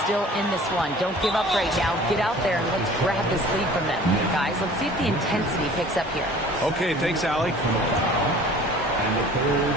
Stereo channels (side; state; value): both; normal; correlation 0.47